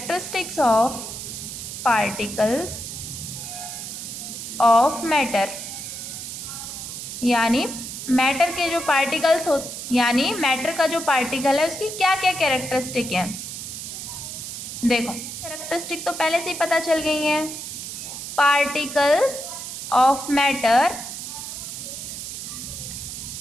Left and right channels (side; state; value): right; noise; hiss, 8 dB below the sound